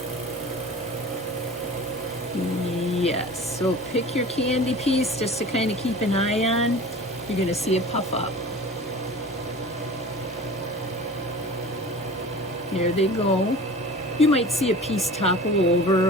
Yes, so pick your candy piece just to kind of keep an eye on. You're gonna see it puff up. There they go. You might see a piece topple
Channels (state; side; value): normal; both; correlation 0.39